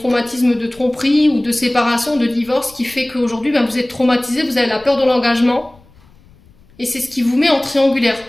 de tromperie ou de séparation, de divorce, qui fait qu'aujourd'hui, ben, vous êtes traumatisé, vous avez la peur de l'engagement. Et c'est ce qui vous met en triangulaire.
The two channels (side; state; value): left; noise; rumble, 28 dB below the sound